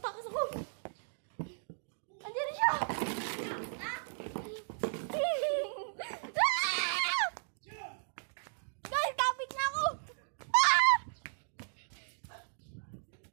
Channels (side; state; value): left; silent; digital silence